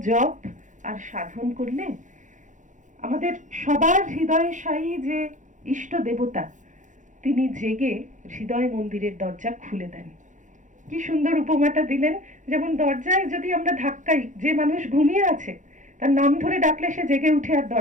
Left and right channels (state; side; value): late; left; 0.36 ms